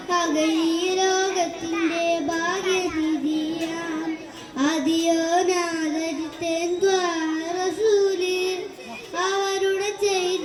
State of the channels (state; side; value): identical; both; correlation 1.00